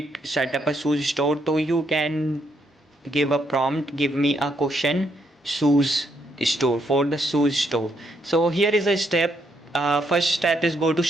set up a shoes store, so you can give a prompt, give me a question, shoes store, for the shoes store. So here is a step. First step is go to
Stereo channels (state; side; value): normal; both; correlation 0.75